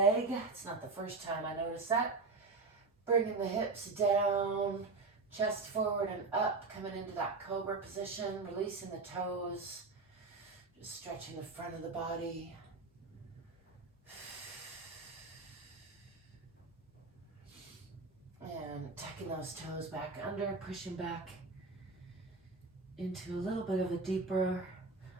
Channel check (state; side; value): quieter; left; 3.9 dB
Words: It's not the first time I noticed that. Bringing the hips down, chest forward and up, coming into that cobra position, releasing the toes, just stretching the front of the body. And tucking those toes back under, pushing back into a little bit of a deeper